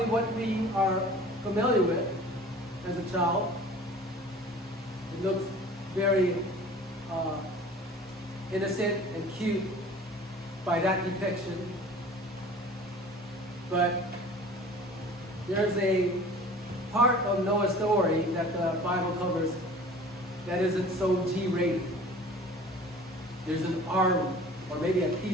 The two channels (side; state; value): both; normal; correlation 0.45